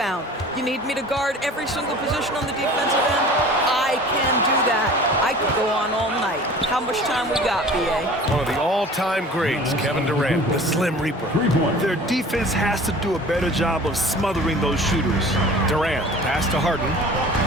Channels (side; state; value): both; normal; correlation 0.43